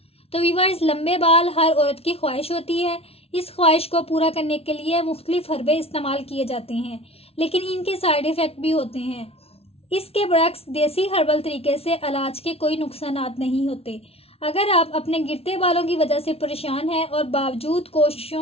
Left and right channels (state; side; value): late; right; 0.29 ms